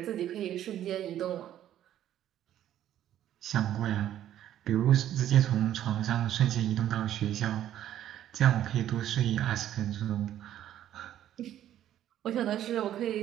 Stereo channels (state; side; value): quieter; left; 11.7 dB